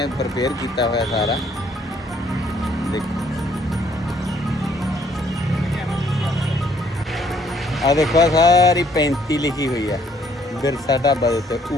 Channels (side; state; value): both; normal; correlation 0.65